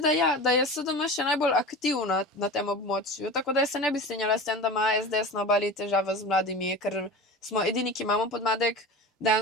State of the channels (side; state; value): both; normal; correlation 0.32